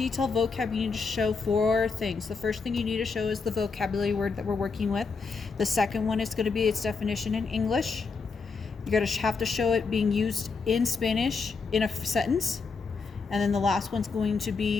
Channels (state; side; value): quieter; right; 4.7 dB